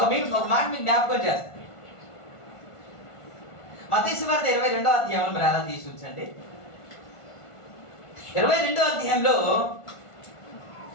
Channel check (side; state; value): right; late; 1.5 ms